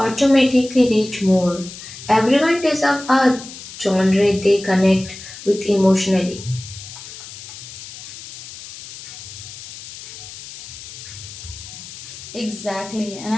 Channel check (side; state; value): left; noise; hiss, 14 dB below the sound